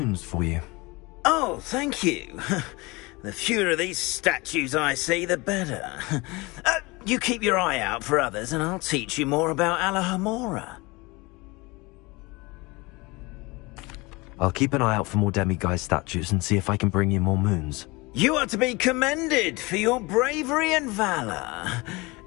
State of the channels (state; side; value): quieter; right; 24.4 dB